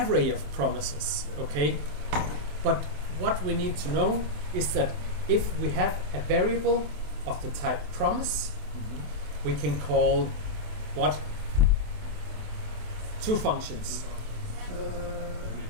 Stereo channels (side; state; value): left; late; 27 ms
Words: of promises, okay? But what we need to know is that if we have a variable of the type promise, we can call what? Two functions.